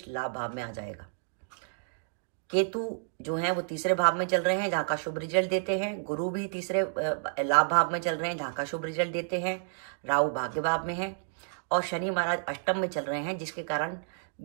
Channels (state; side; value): silent; left; digital silence